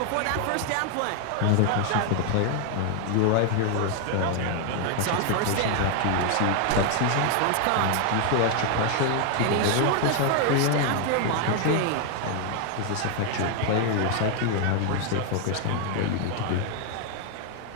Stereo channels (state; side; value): different; both; correlation 0.00